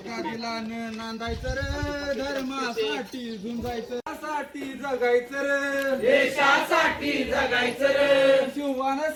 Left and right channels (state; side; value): identical; both; correlation 1.00